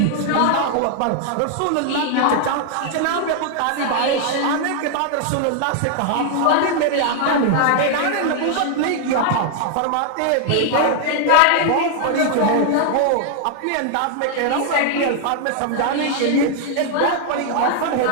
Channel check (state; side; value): different; both; correlation 0.00